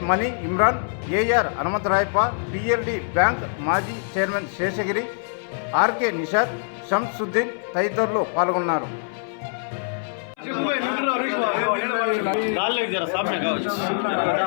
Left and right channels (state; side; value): silent; right; 61 dB below the other